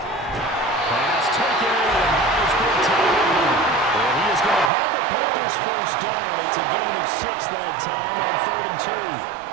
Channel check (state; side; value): drops out; left; at 4.7 s